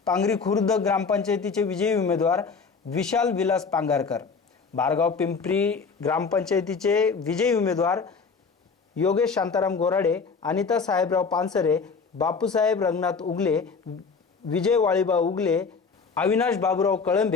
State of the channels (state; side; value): quieter; right; 5.1 dB